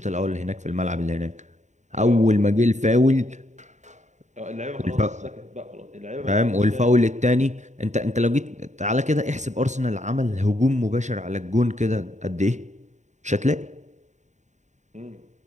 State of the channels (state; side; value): late; left; 0.34 ms